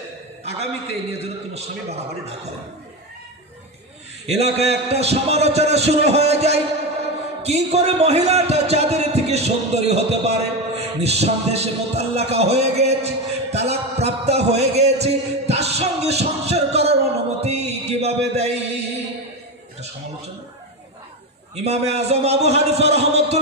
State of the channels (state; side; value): normal; both; correlation 0.16